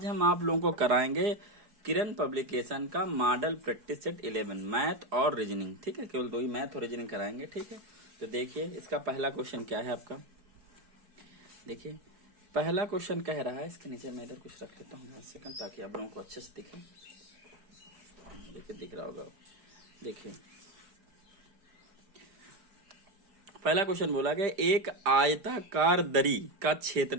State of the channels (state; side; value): late; left; 4.9 ms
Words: हम आप लोगों को कराएंगे किरण पब्लिकेशन का मॉडल प्रैक्टिस सेट 11 मैथ और रीजनिंग। ठीक है, केवल दो ही मैथ और रीजनिंग कराएंगे। ठीक है, तो देखिए इसका पहला क्वेश्चन क्या है आपका। देखिए पहला क्वेश्चन कह रहा है, इसके नीचे मैं इधर कुछ रख लेता हूँ 1 सेकंड, ताकि आप लोगों को अच्छे से दिखे। देखिए दिख रहा होगा। देखिए पहला क्वेश्चन बोला गया, एक आयताकार दरी का